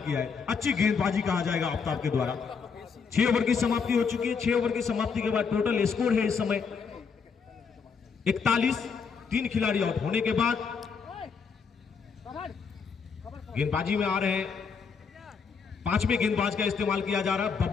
है। अच्छी गेंदबाजी कहा जाएगा आफ्ताब के द्वारा। 6 ओवर की समाप्ति हो चुकी है। 6 ओवर की समाप्ति के बाद टोटल स्कोर है इस समय 41। 3 खिलाड़ी आउट होने के बाद गेंदबाजी में आ रहे हैं, 5वें गेंदबाज का इस्तेमाल किया जा रहा है।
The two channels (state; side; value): quieter; right; 5.7 dB